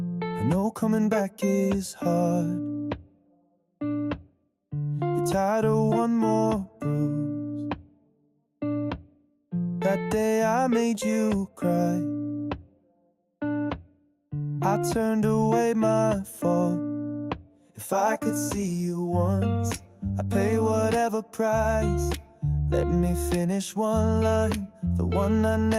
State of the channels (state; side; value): identical; both; correlation 1.00